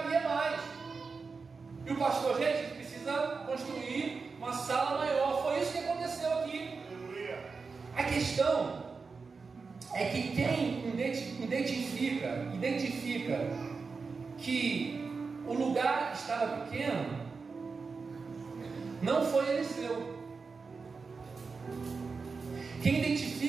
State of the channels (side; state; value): left; quieter; 4.7 dB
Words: mais. E o pastor, gente, precisa construir uma sala maior. Foi isso que aconteceu aqui. A questão é que quem identifica que o lugar estava pequeno não foi Eliseu. Quem